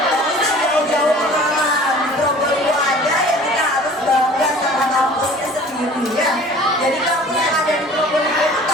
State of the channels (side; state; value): both; normal; correlation 0.46